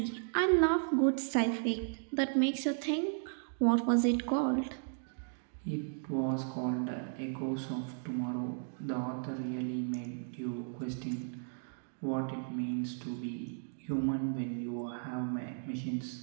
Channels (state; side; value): silent; left; digital silence